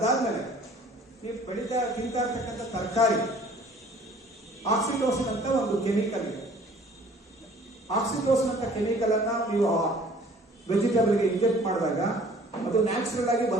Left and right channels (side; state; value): both; normal; correlation 0.52